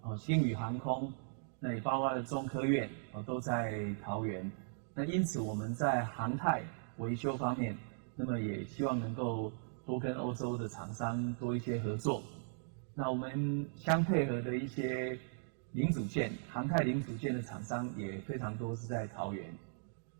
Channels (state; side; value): silent; left; digital silence